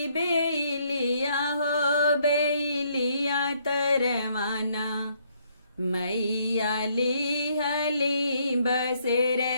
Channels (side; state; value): both; inverted; correlation -0.69